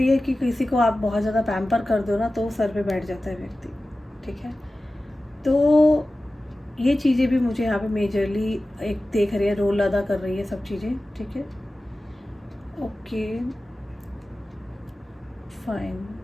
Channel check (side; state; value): both; normal; correlation 0.95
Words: है कि किसी को आप बहुत ज़्यादा पैम्पर कर दो ना तो सर पे बैठ जाता है व्यक्ति, ठीक है। तो ये चीज़ें भी मुझे यहाँ पे मेजरली एक देख रही है, रोल अदा कर रही है सब चीज़ें, ठीक है। ओके फाइन,